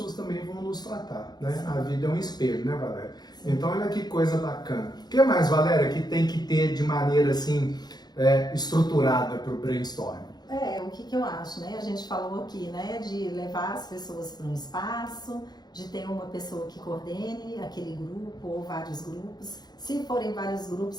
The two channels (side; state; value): right; late; 0.20 ms